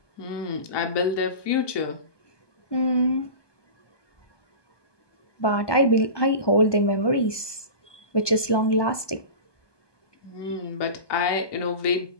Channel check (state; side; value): late; right; 1.2 ms